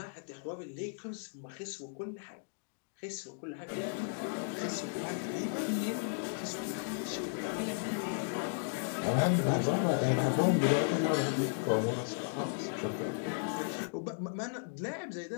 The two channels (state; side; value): silent; right; digital silence